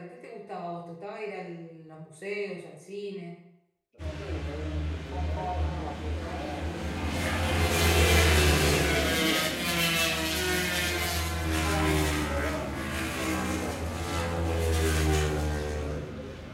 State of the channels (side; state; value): both; identical; correlation 1.00